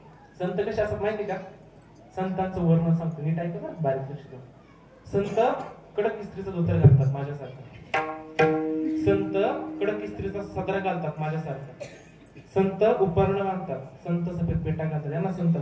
संत कसे असतात माहिती का? संतांचं वर्णन सांगतो, नीट ऐका ना, बारीक लक्ष द्या. संत कडक इस्त्रीचा धोतर घालतात माझ्यासारखं. संत कडक इस्त्रीचा सदरा घालतात माझ्यासारखं. संत उपर्ण घालतात. संत सफेद पेटा घालतात. यांना संत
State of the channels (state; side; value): identical; both; correlation 1.00